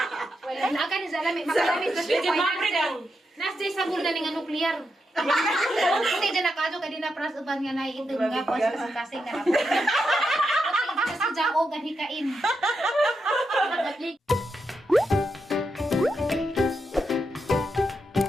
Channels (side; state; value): both; normal; correlation 0.84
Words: Wala na ka ni sa alam makalami sa Nasday sa bulda nga nuklear. Puti din nakado kay na pras uban nga naiitong nga pas kasing na. Puti sa jao ganhikain.